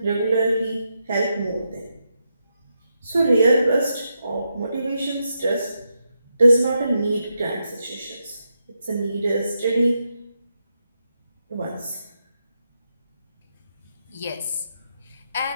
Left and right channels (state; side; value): inverted; both; correlation -0.84